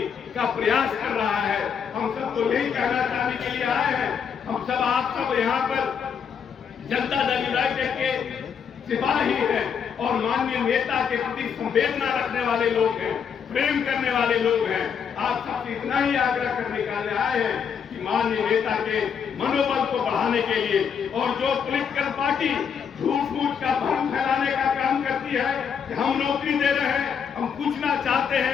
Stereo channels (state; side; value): quieter; right; 7.1 dB